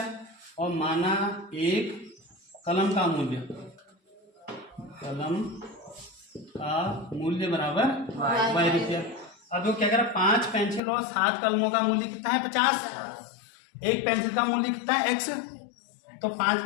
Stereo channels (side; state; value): right; drops out; at 10.8 s